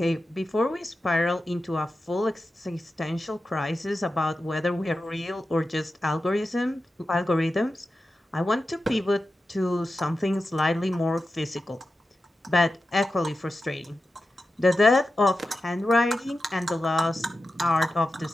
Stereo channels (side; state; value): both; normal; correlation 0.92